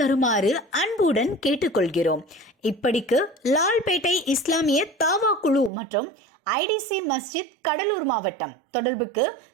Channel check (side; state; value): left; drops out; at 5.7 s